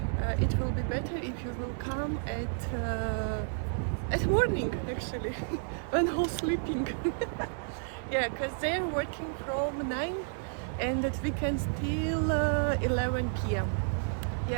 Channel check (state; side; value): silent; left; digital silence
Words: it will be better if you will come at morning actually, when all sleeping. Yeah, because they're working from 9 and at weekends till 11 p.m.